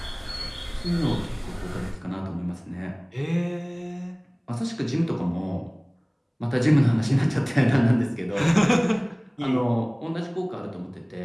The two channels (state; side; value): identical; both; correlation 1.00